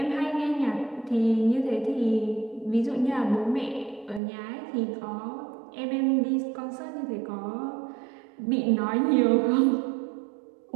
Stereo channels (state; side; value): drops out; left; at 4.2 s